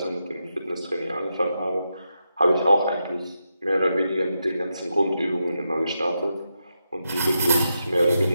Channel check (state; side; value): inverted; both; correlation -0.86